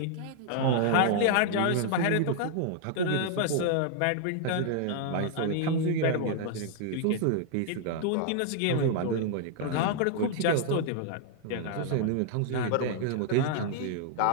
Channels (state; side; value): different; both; correlation -0.01